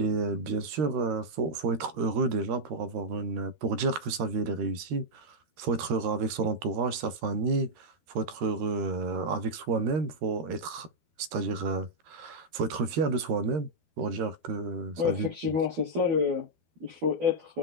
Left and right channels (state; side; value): late; left; 12 ms